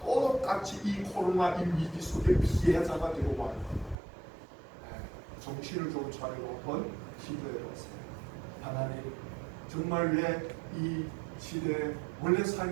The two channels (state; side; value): drops out; left; at 4.0 s